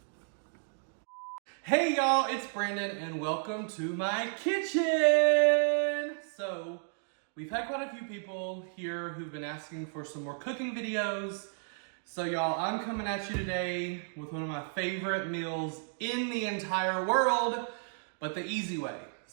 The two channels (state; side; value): silent; left; digital silence